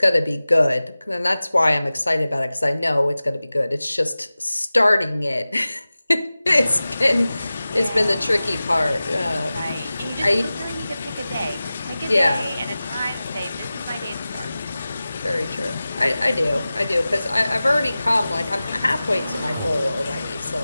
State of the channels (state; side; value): inverted; both; correlation -0.96